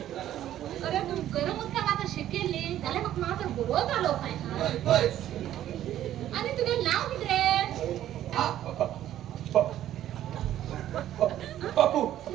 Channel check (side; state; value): left; quieter; 12.2 dB